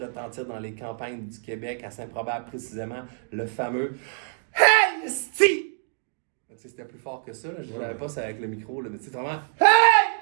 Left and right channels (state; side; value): silent; left; digital silence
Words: dans les campagnes du Québec, à Saint-Probable précisément, le fameux Hey, esti! C'était plus fort que ça, je ne savais pas ça avec le micro, là, mais c'est vraiment